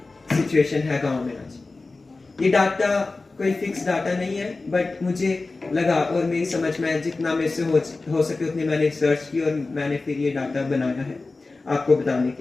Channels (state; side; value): quieter; right; 3.5 dB